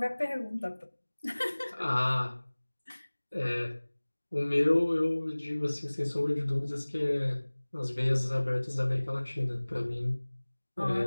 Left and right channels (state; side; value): inverted; both; correlation -1.00